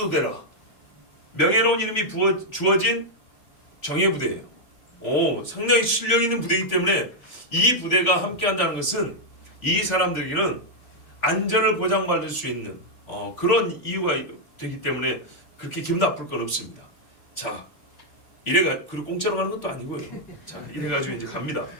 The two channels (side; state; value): right; late; 3.5 ms